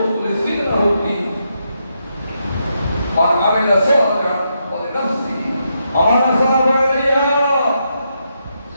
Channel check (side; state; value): both; inverted; correlation -0.81